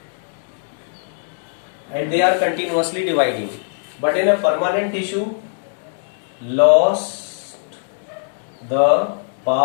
and they are continuously dividing. But in a permanent tissue, lost the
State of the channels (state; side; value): silent; right; digital silence